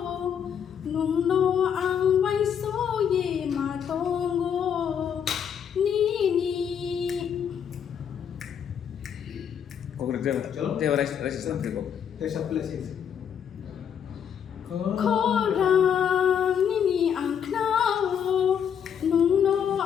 nung no ang vai so ye ma tongo nini. Khorang nini ang knao nung no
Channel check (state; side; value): quieter; right; 8.1 dB